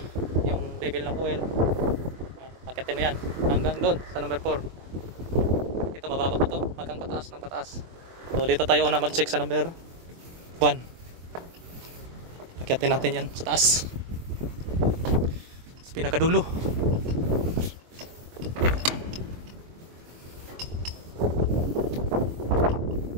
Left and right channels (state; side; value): late; left; 24 ms